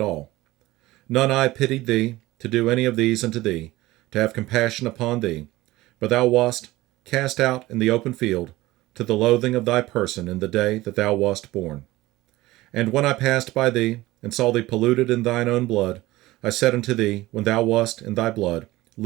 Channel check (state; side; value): quieter; left; 18.2 dB